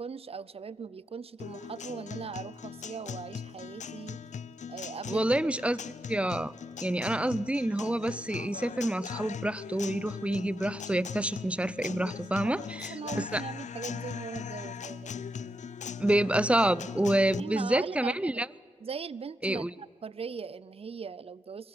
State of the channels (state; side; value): normal; both; correlation 0.84